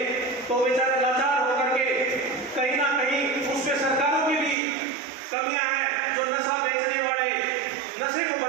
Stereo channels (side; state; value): left; drops out; at 4.5 s